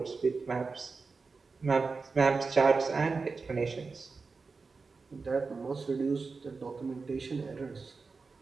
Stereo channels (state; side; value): quieter; left; 4.4 dB